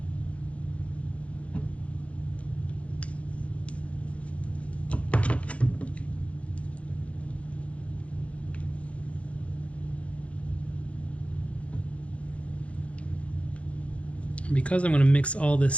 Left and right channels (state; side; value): late; right; 0.063 ms